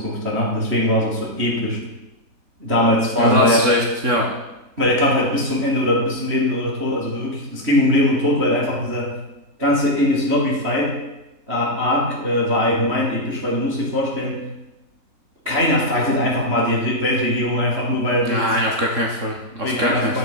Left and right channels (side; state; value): left; late; 3.6 ms